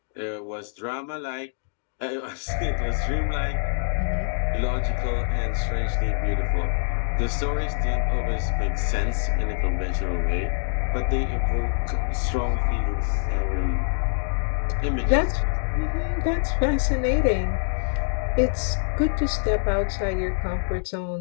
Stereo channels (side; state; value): right; silent; digital silence